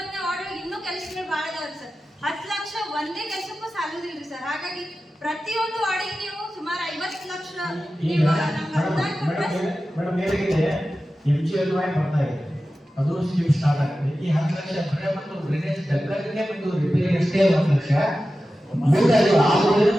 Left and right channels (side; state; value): both; normal; correlation 0.94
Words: ವಾರ್ಡ್ ಒಳಗೆ ಇನ್ನೂ ಕೆಲಸಗಳು ಭಾಳ ಅದಾವ್ರಿ ಸರ್. 10 ಲಕ್ಷ ಒಂದೇ ಕೆಲಸಕ್ಕೂ ಸಾಲೋದಿಲ್ರಿ ಸರ್. ಹಾಗಾಗಿ ಪ್ರತಿಯೊಂದು ವಾರ್ಡಿಗೆ ನೀವು ಸುಮಾರು 50 ಲಕ್ಷ ನೀವು ನಮ್ಗೆ ಅನುದಾನ ಕೊಟ್ರೆ ಮೇಡಮ್ ಏನಾಗಿದೆ MGLY ಬರ್ತಾ ಇದೆ, ಅದು ಸ್ಕೀಮ್ ಸ್ಟಾರ್ಟ್ ಆಗ್ತದೆ. ಈ 10 ಲಕ್ಷ ಬರೇ ಮತ್ತು ಡ್ರೈನೇಜ್ ಡೆವಲಪ್ಮೆಂಟ್ಗೆ ಮತ್ತು ರಿಪೇರಿ ಅಷ್ಟೇ 10 ಲಕ್ಷ ಮುಂದೆ ಅದು ಆಗೋದ್ರೆ